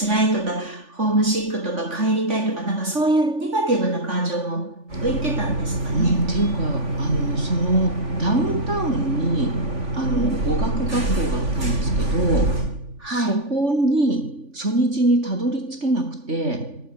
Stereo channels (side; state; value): left; late; 3.5 ms